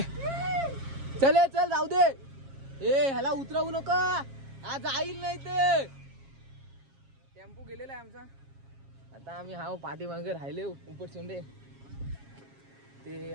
चल जाऊ दे. ह्याला उतरवू नका, आज जाईल नाही ते. टेम्पो गेलेला आहे आमचा. आता आम्ही हा पाठीमागे राहिले उपट सोंडे ते.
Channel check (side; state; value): left; late; 7.4 ms